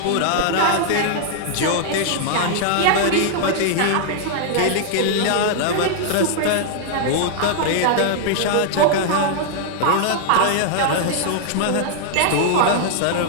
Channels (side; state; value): both; different; correlation 0.00